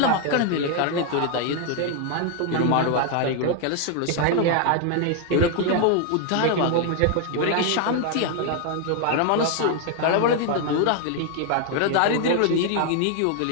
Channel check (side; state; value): both; different; correlation 0.00